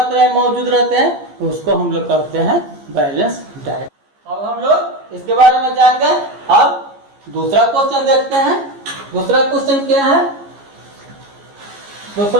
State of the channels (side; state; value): left; late; 15 ms